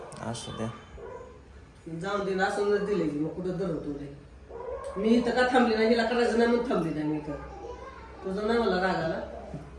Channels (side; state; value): both; identical; correlation 1.00